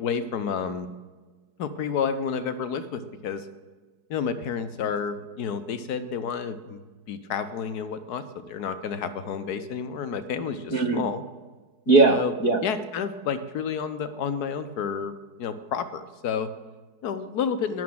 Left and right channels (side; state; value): right; late; 4.7 ms